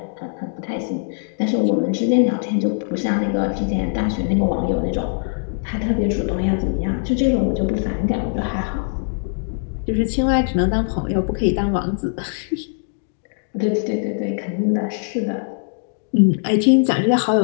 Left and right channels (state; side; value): silent; right; digital silence